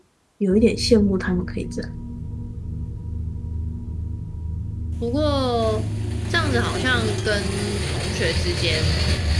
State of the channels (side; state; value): both; identical; correlation 1.00